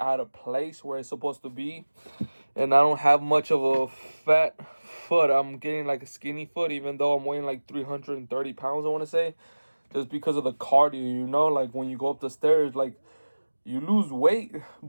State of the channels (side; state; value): both; inverted; correlation -1.00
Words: of place where it's supposed to be. And I don't have much of a fat foot. I'm getting like a skinny foot, even though I'm weighing like 330 pounds, I want to say. Just because of the cardio, like when you go up the stairs, like, you lose weight,